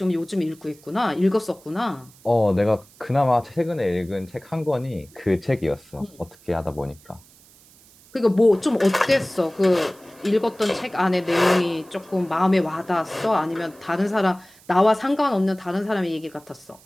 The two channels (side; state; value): right; noise; hiss, 26 dB below the sound